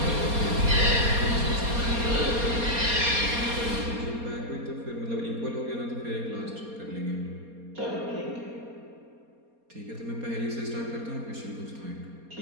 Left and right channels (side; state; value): left; late; 4.3 ms